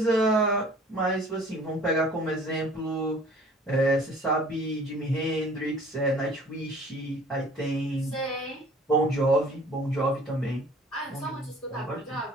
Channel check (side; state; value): both; normal; correlation 0.51